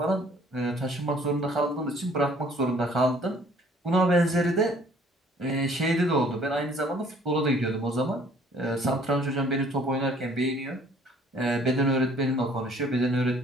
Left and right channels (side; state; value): both; normal; correlation 0.57